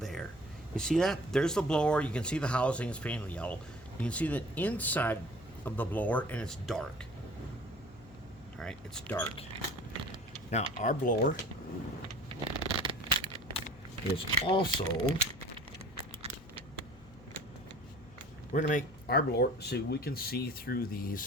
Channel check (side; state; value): left; noise; hum, 22 dB below the sound